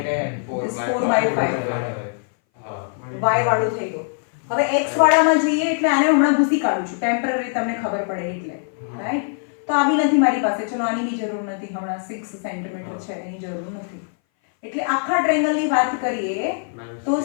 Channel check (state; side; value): silent; right; 60 dB below the other